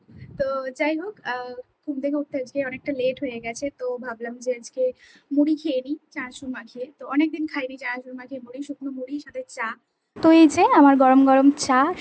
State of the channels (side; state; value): both; identical; correlation 1.00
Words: তো যাই হোক, ঘুম থেকে উঠতে আজকে অনেকটা লেট হয়ে গেছে, তো ভাবলাম যে আজকে মুড়ি খেয়ে নিই চানাচুর মাখিয়ে। তো অনেকদিন খাইনি চানাচুর মাখিয়ে মুড়ি, শুকনো মুড়ির সাথে চা। তো এই যে আমার গরম গরম চা